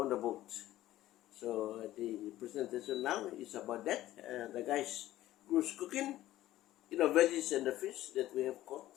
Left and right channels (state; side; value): quieter; right; 14.7 dB